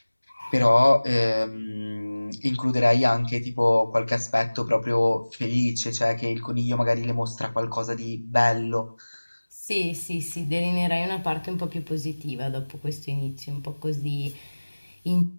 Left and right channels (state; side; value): inverted; both; correlation -1.00